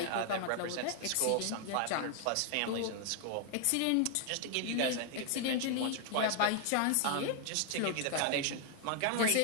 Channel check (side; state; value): both; different; correlation 0.00